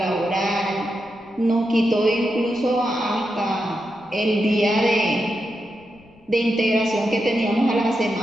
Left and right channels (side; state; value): left; noise; rumble, 29 dB below the sound